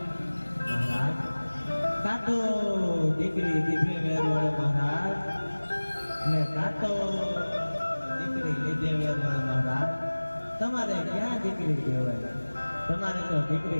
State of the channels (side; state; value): both; inverted; correlation -1.00